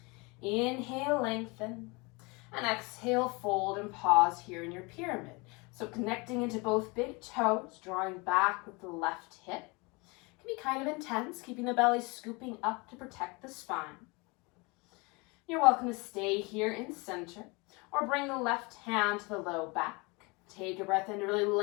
Inhale, lengthen. And exhale, fold and pause here in your pyramid. So connecting into both big toes, drawing back with the left hip. It can be kind of intense, keeping the belly scooping up to protect the spine. You're welcome to stay here in center or bring the left hand to the low back. Take a breath in to really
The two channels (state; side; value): quieter; right; 27.3 dB